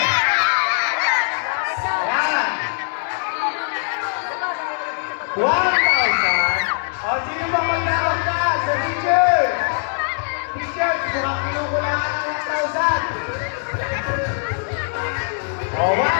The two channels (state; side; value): silent; right; 65 dB below the other